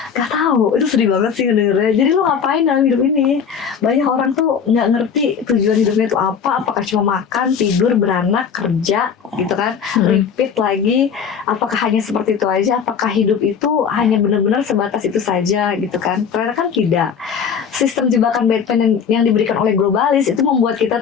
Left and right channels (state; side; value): quieter; right; 7.0 dB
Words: Nggak tahu, itu sedih banget sih dengernya. Jadi lo ngapain dalam hidup ini? Banyak orang tuh nggak ngerti tujuan hidupnya itu apa. Apakah cuma makan, tidur, beranak, kerja gitu kan, repeat lagi. Apakah hanya seperti itu aja? Apakah hidup itu hanya benar-benar sebatas itu saja gitu kan? Ternyata kan tidak. Sistem jebakan Batman yang diberikan oleh globalis itu membuat kita